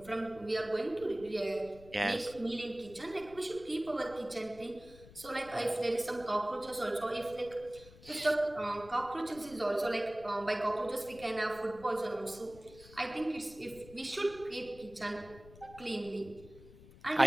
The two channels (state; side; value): noise; left; rumble, 20 dB below the sound